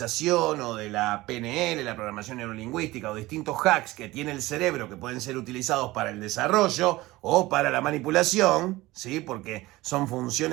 o de la PNL, la programación neurolingüística o distintos hacks que tiene el cerebro que pueden ser utilizados para el desarrollo o para la manipulación, ¿sí? Porque son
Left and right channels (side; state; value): left; quieter; 18.9 dB